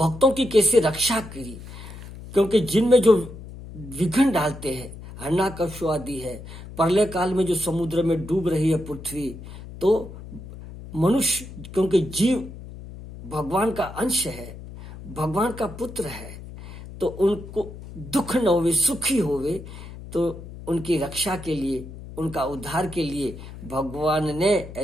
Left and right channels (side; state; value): left; noise; hum, 14 dB below the sound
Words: की कैसे रक्षा की। क्योंकि जिनमें जो विघ्न डालते हैं, हिरण्यकश्यप आदि है, प्रलय काल में जो समुद्र में डूब रही है पृथ्वी, तो मनुष्य, क्योंकि जीव भगवान का अंश है, भगवान का पुत्र है, तो उनको दुख न होवे, सुखी होवे। तो उनकी रक्षा के लिए, उनका उद्धार के लिए भगवान ने